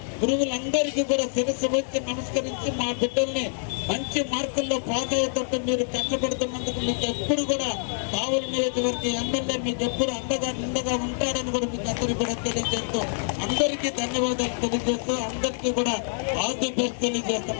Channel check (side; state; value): right; silent; digital silence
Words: గురువులందరికీ కూడా శిరస్సు వచ్చి నమస్కరించి మా బిడ్డల్ని మంచి మార్కుల్లో పాస్ అయ్యేటట్టు మీరు కష్టపడుతున్నందుకు మీకు ఎప్పుడు కూడా కావలి నియోజకవర్గ ఎమ్మెల్యే మీకు ఎప్పుడు నిండగా ఉంటారని కూడా మీకు అందరికీ కూడా తెలియజేస్తూ అందరికీ ధన్యవాదాలు తెలియజేస్తూ అందరికీ కూడా ఆల్ ది బెస్ట్